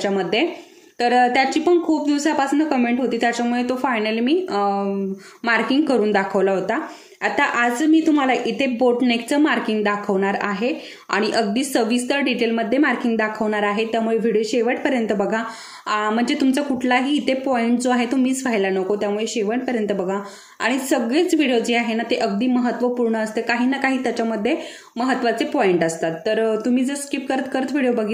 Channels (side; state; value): both; identical; correlation 1.00